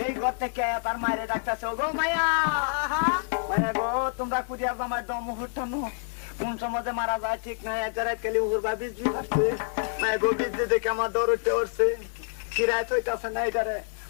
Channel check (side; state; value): right; silent; digital silence